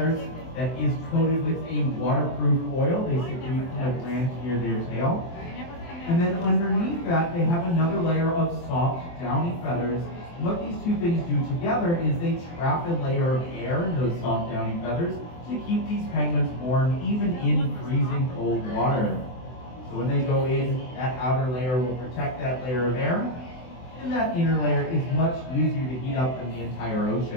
that is coated with a waterproof oil they secrete from the gland near their tail. And then underneath that, they have another layer of soft, downy feathers. What these two things do together is they trap a layer of air in those soft, downy feathers to keep these penguins warm even in freezing cold water. So when they go in, that outer layer will protect that layer of air, and that inner layer is much easier to heat up than the entire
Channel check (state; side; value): late; right; 23 ms